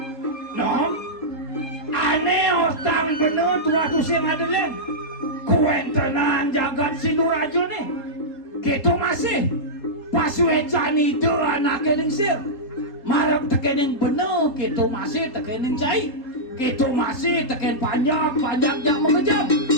nom aneh otang bener tua tu si Madeleine kuentenan jagat Sinuraja nih kita masih pasuecan itu anak lingsir marap tekening bener kita masih tekening cai kita masih teken panjang yang mengejam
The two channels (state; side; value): late; right; 3.7 ms